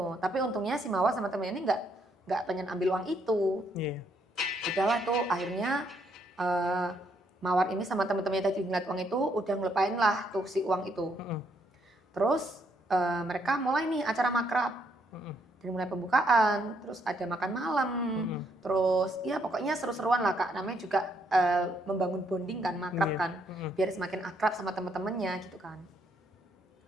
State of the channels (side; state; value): both; normal; correlation 0.72